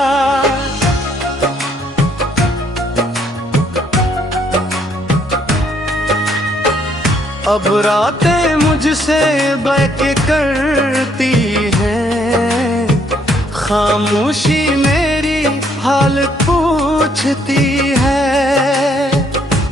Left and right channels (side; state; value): both; normal; correlation 0.68